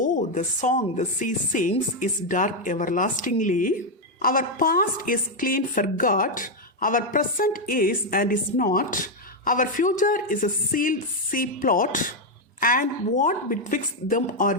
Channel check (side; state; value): both; normal; correlation 0.02